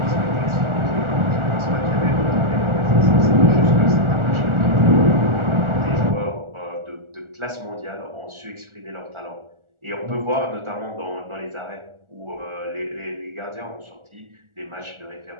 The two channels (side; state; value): left; late; 1.4 ms